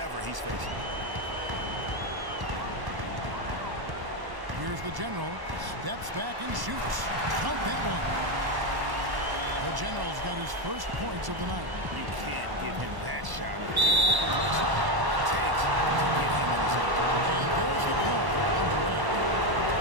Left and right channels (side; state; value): left; late; 1.1 ms